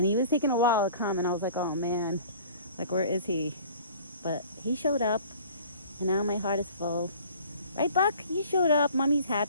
he was taking a while to come. And I was like, oh, man. Like, where is he? But he showed up. And now my heart is full. Right, Buck? You showed up. Mommy's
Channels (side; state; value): both; inverted; correlation -0.48